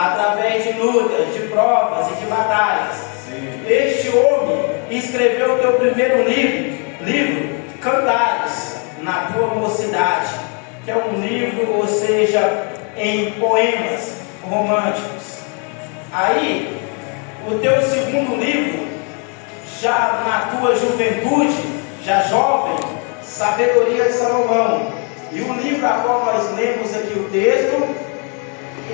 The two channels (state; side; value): quieter; right; 37.8 dB